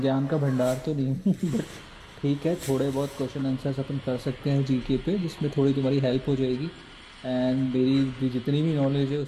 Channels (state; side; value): identical; both; correlation 1.00